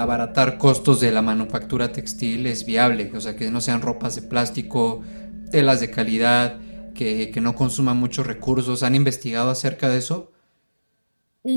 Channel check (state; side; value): inverted; both; correlation -1.00